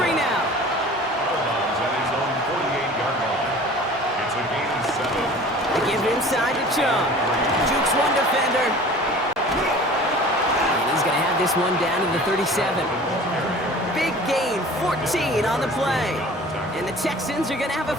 now. They give it inside to Chubb. Jukes one defender. And he's going to have this one down to the 37. Big gain, 14 on the play. And the Texans are going to have a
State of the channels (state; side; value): normal; both; correlation 0.44